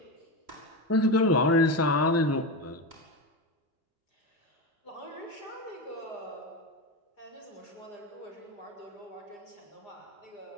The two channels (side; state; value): both; normal; correlation 0.18